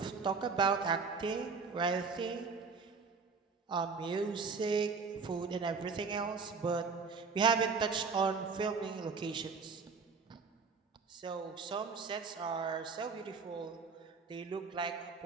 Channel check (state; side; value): quieter; left; 4.9 dB